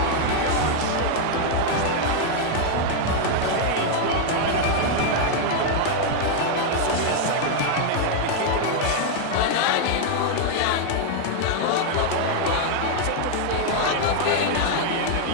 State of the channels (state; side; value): different; both; correlation 0.00